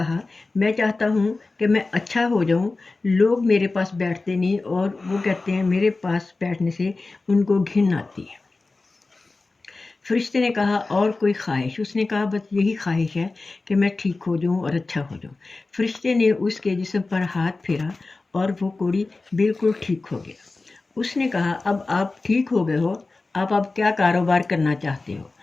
मैं चाहता हूँ कि मैं अच्छा हो जाऊँ। लोग मेरे पास बैठते नहीं और वो कहते हैं मेरे पास बैठने से उनको घिन आती है। फरिश्ते ने कहा, और कोई ख्वाहिश? उसने कहा, बस यही ख्वाहिश है कि मैं ठीक हो जाऊँ और अच्छा हो जाऊँ। फरिश्ते ने उसके जिस्म पर हाथ फेरा और वो कोढ़ी बिल्कुल ठीक हो गया। उसने कहा, अब आप ठीक हो गए हो, आप क्या कारोबार करना चाहते हो?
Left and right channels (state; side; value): quieter; right; 3.5 dB